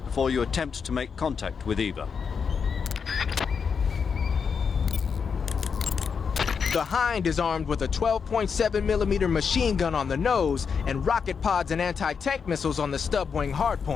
you attempt to make contact with Eva. The Hind is armed with a 12.7mm machine gun on the nose and rocket pods and anti-tank missiles on the stub wing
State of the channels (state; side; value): quieter; right; 6.1 dB